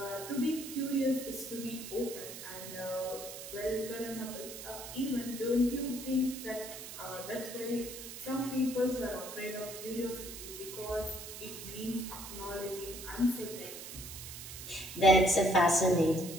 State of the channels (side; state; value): right; noise; hiss, 10 dB below the sound